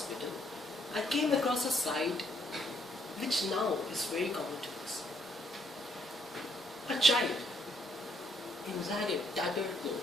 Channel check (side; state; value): both; normal; correlation 0.70